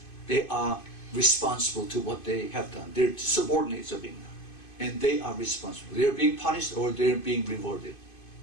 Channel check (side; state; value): right; late; 2.5 ms